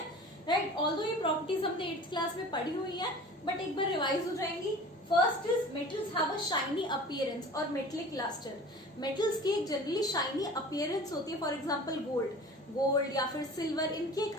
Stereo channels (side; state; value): both; normal; correlation 0.41